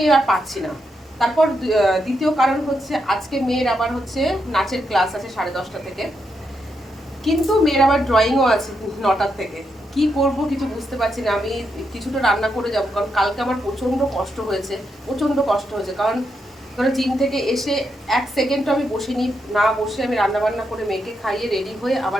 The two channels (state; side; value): normal; both; correlation 0.82